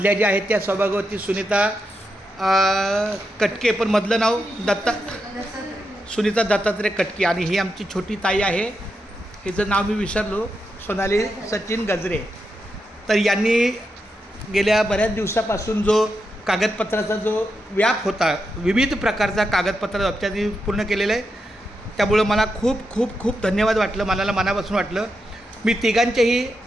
ज्या आहेत त्या सौभाग्यवती सुनीता कटके, पण मधलं नाव सुनीता दत्तात्रय कटके. आणि ही आमची छोटी ताई आहे, हिचं नाव मी विसरलो, सोनाली सचिन गजरे. तर यांनी गेल्या बऱ्याच दिवसापासून जो कागदपत्राचा जो व्याप होता, विविध प्रकारचा कागदपत्र त्यांनी पूर्ण केलेलं आहे. त्यामुळं मला खूप खूप खूप धन्यवाद वाटलं, मला मनापासून वाटलं. मी तिघांचेही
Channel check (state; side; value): normal; both; correlation 0.86